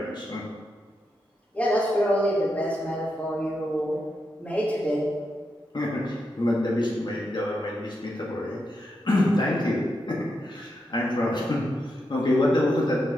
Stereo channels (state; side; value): normal; both; correlation 0.85